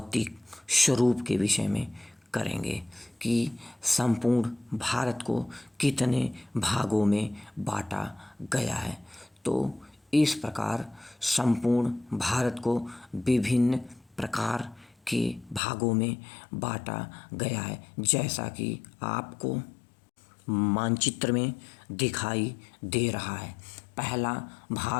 स्वरूप के विषय में करेंगे कि संपूर्ण भारत को कितने भागों में बांटा गया है। तो इस प्रकार संपूर्ण भारत को विभिन्न प्रकार के भागों में बांटा गया है, जैसा कि आपको मानचित्र में दिखाई दे रहा है। पहला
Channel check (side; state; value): right; drops out; at 15.6 s